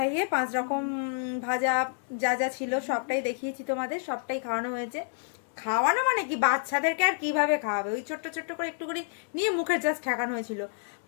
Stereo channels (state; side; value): silent; right; digital silence